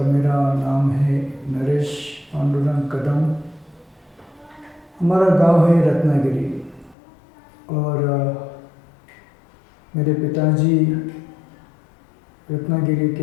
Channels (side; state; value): right; drops out; at 7.0 s